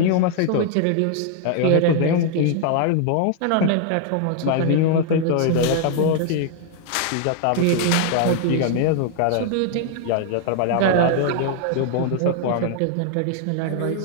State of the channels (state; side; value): different; both; correlation 0.00